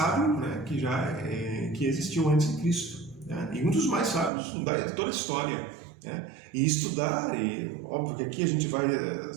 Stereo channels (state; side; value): drops out; left; at 4.3 s